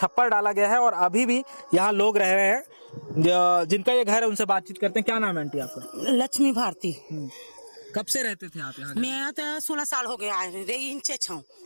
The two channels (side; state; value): both; inverted; correlation -1.00